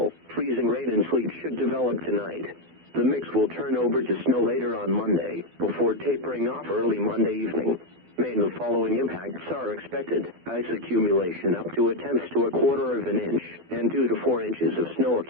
freezing rain, and sleet should develop tonight. The mix will turn over to snow later on Monday, before tapering off early Monday evening. The following impacts are expected: ice accumulation up to 1/10 to 1/4 of an inch, and 2 to 4 inches of snow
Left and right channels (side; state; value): left; late; 12 ms